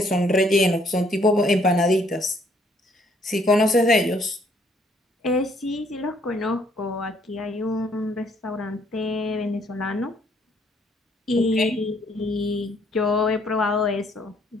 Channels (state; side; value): normal; both; correlation 0.66